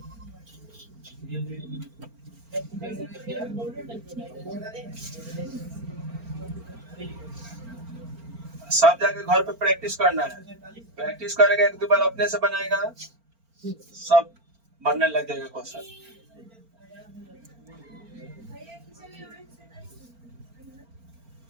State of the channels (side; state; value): left; late; 4.4 ms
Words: सब जाके घर पे प्रैक्टिस करना है। प्रैक्टिस करेगा एक दो बार अपने से बनाएगा सब बनने लग जाएगा क्वेश्चन।